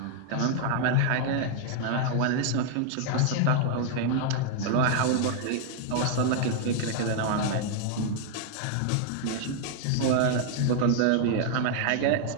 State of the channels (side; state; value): both; different; correlation 0.00